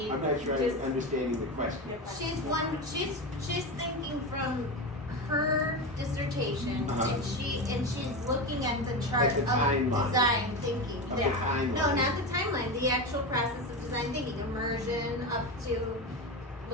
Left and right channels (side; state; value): both; normal; correlation 0.19